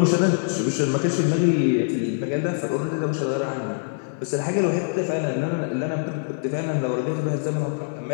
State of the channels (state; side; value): silent; right; 59 dB below the other